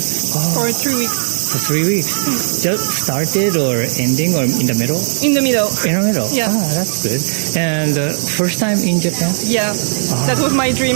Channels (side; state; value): left; silent; digital silence